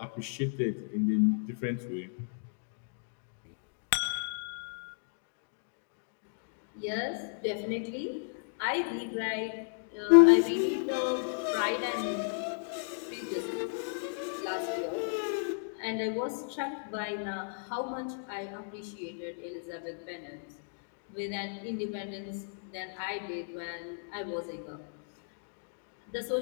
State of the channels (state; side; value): silent; right; digital silence